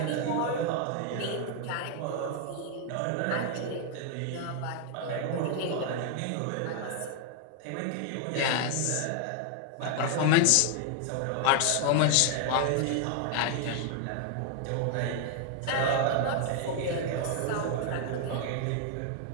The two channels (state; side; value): different; both; correlation 0.00